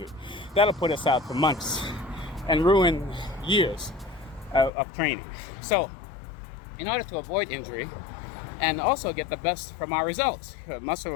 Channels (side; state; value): right; drops out; at 4.7 s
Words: That'll put us out for months and ruin years of training. So in order to avoid injury and also get the best from our results,